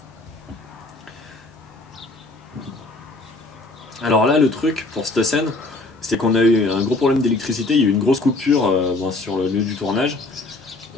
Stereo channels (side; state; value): right; quieter; 3.0 dB